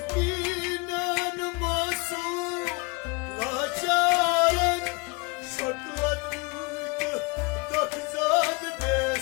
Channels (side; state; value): right; quieter; 28.2 dB